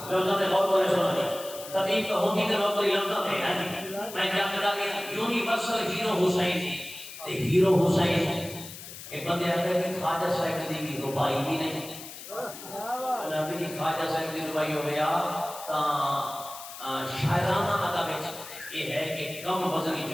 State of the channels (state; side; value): noise; left; hiss, 13 dB below the sound